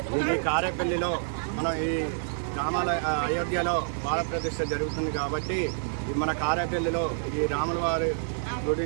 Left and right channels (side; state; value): left; silent; digital silence